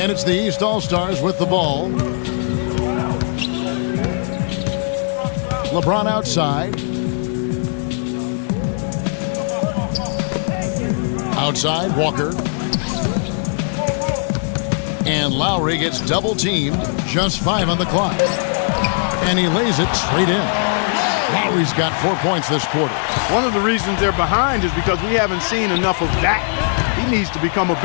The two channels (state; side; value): silent; right; digital silence